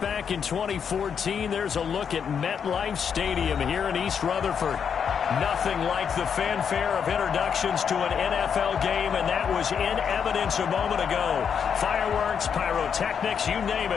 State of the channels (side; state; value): right; quieter; 7.2 dB